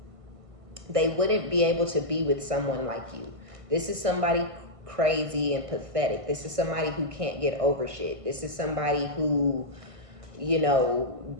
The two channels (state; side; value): late; left; 1.5 ms